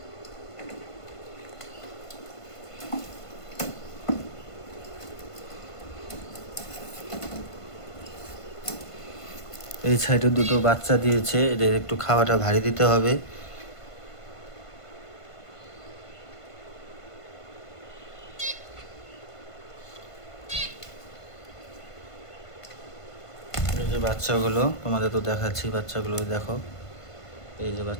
এই সাইডে দুটো বাচ্চা দিয়েছে, এদের একটু খাওয়াটা ভারী দিতে হবে। এই যে বাচ্চাগুলো তোমাদের তো দেখাচ্ছি, বাচ্চাগুলো দেখো, এই যে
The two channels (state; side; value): late; right; 1.5 ms